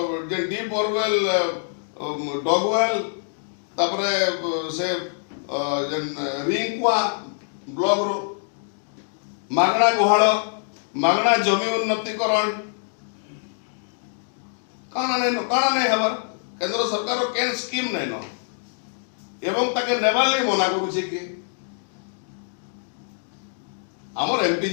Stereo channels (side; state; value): right; silent; digital silence